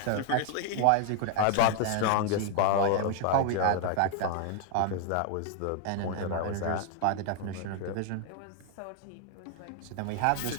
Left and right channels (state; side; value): different; both; correlation 0.00